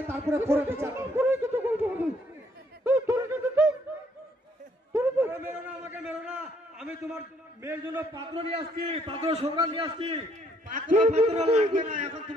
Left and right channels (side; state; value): both; normal; correlation 0.68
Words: তারপরে পরে বিচার হবে। মেরো না, আমাকে মেরো না। আমি তোমার মেয়ের জন্য পাত্র নিয়ে আসছি, পাত্র সংগ্রাম নিয়ে আসছি। পাত্র পাত্র লাগবে না, এখন